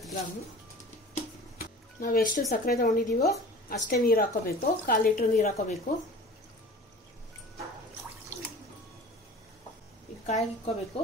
ಗ್ರಾಮ್. ನಾವು ಎಷ್ಟು ಸಕ್ಕರೆ ತಗೊಂಡಿದ್ದೀವೋ ಅಷ್ಟೇ ನೀರು ಹಾಕೋಬೇಕು. 1/4 ಲೀಟರ್ ನೀರು ಹಾಕೋಬೇಕು. ಇದು ಕಾಯಿಗೆ ಇಕ್ಕೋಬೇಕು.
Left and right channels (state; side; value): normal; both; correlation 0.40